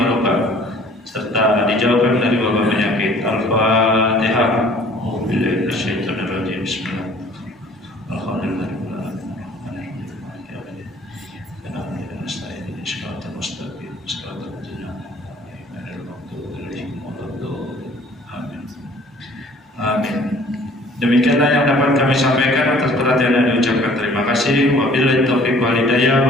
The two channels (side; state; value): both; normal; correlation 0.53